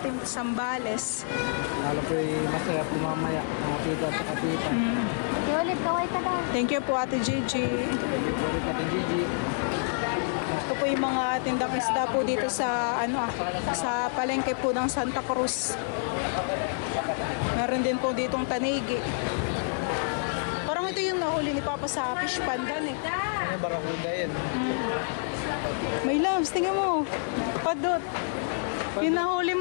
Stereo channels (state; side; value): silent; right; 59 dB below the other